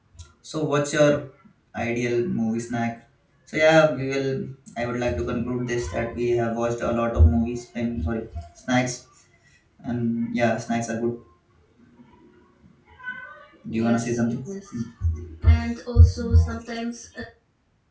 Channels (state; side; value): identical; both; correlation 1.00